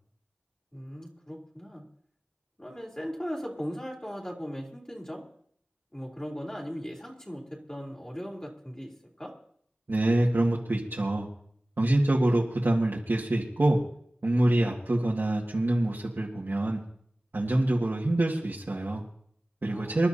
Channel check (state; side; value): normal; both; correlation 0.97